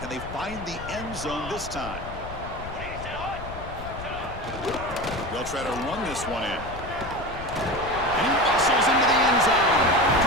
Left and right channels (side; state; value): left; noise; rumble, 11 dB below the sound